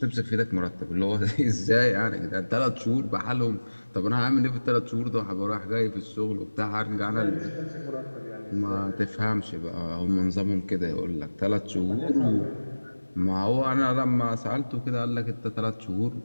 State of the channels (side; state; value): both; inverted; correlation -1.00